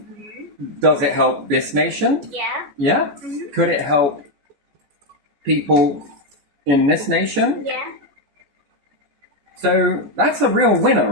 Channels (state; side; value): late; left; 14 ms